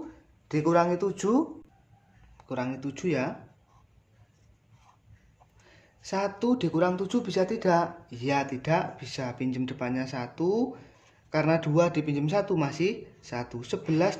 dikurangi 7 kurangi 7 ya. 1 dikurang 7 bisa tidak? Iya tidak bisa, pinjam depannya 1. Karena 2 dipinjam 1 masih 1.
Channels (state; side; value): identical; both; correlation 1.00